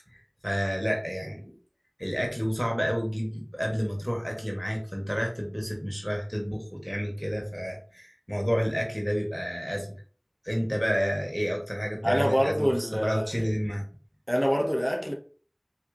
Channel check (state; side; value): identical; both; correlation 1.00